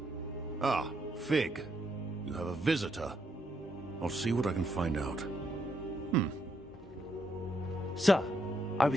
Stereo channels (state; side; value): normal; both; correlation 0.77